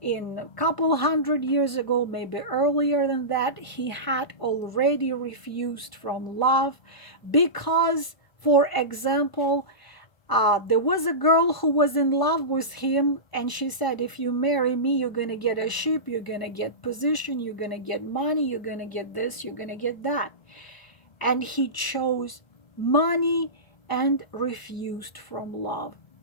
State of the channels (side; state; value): right; late; 1.0 ms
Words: In a couple hundred years ago, maybe earlier than that, he had already refused from love because, for example, there was a girl who was in love with him, and she said, if you marry me, you're going to get a ship, you're going to get position, you're going to get money, you're going to get this, you're going to get that. And he chose money and refused from love.